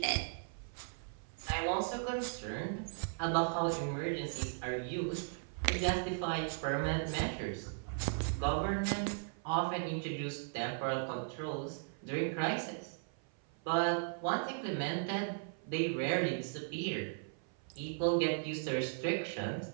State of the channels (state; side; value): silent; left; 53 dB below the other